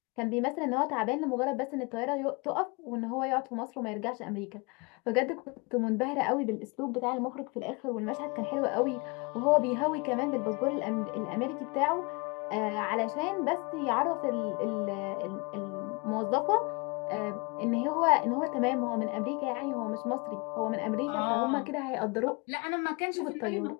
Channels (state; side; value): quieter; right; 28.9 dB